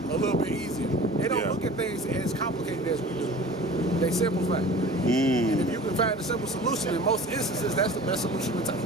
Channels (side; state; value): both; normal; correlation 0.42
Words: a little bit easier. They don't look at things as complicated as we do. They simplify. And if you can find a simple solution, in most instances, that's the best solution to take.